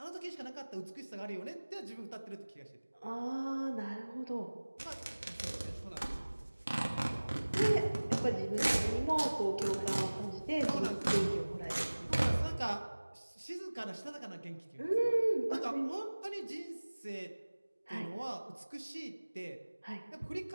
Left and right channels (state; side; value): inverted; both; correlation -1.00